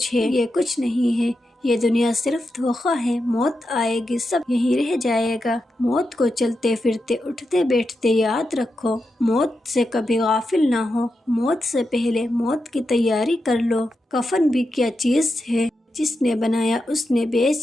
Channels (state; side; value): normal; both; correlation 0.87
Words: ہے۔ یہ کچھ نہیں ہے، یہ دنیا صرف دھوکہ ہے۔ موت آئے گی، سب یہیں رہ جائے گا۔ موت کو چلتے پھرتے اٹھتے بیٹھتے یاد رکھو، موت سے کبھی غافل نہ ہو۔ موت سے پہلے موت کی تیاری کر لو۔ کفن بھی کیا چیز ہے، جس نے بنایا اس نے